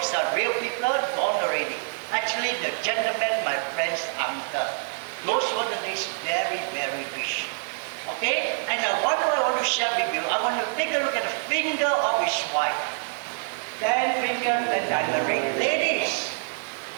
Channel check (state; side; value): silent; left; 61 dB below the other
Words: are real people, gone already. Actually, the gentleman, my friend's uncle. Those were the days very, very rich. Okay, and what I want to share with you, I want to take a look at the finger of his wife. 10 fingers and diamond. Ladies,